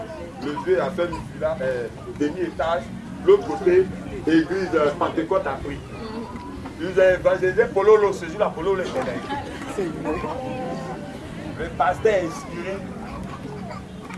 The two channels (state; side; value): identical; both; correlation 1.00